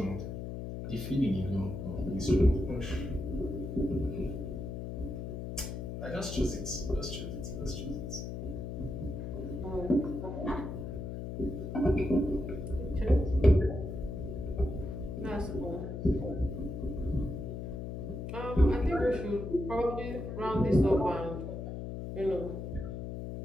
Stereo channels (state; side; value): noise; left; hum, 6 dB below the sound